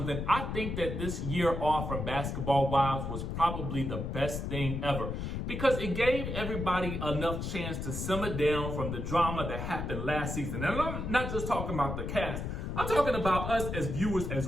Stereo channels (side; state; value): left; noise; rumble, 4 dB below the sound